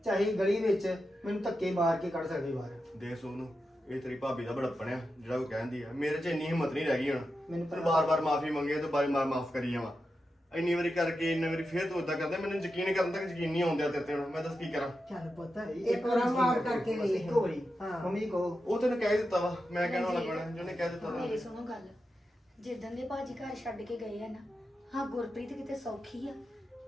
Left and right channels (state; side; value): normal; both; correlation 0.89